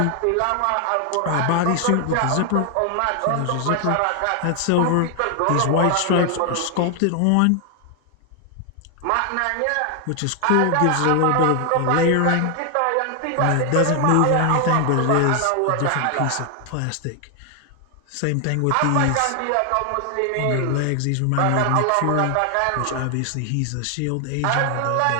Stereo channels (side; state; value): both; different; correlation 0.00